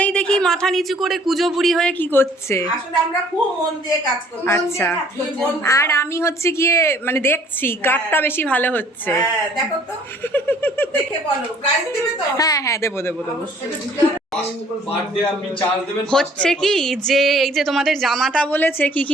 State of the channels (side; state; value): both; normal; correlation 0.57